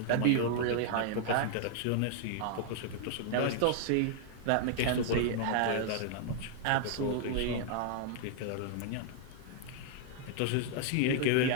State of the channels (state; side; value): different; both; correlation 0.00